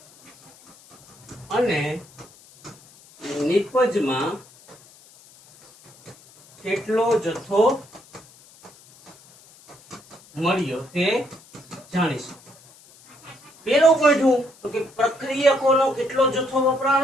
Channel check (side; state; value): left; noise; hiss, 25 dB below the sound